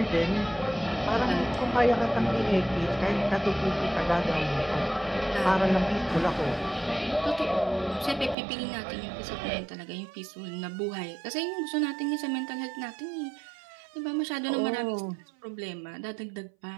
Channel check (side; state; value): left; drops out; at 8.3 s